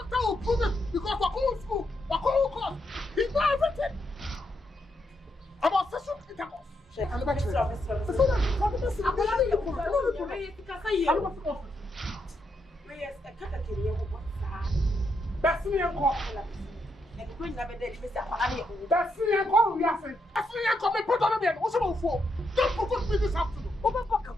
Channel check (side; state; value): both; normal; correlation 0.80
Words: will prove it because we're going to school. We're going to court. He knows everything. About sexual intercourse. And the back